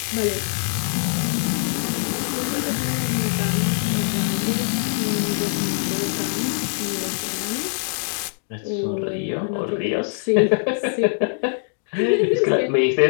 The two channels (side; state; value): right; silent; digital silence